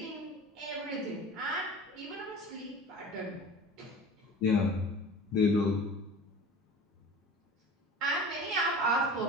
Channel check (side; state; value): both; normal; correlation 0.38